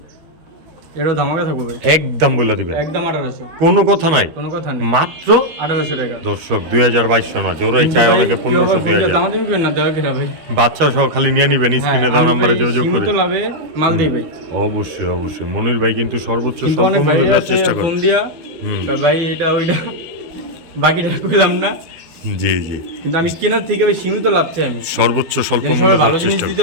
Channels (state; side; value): late; left; 13 ms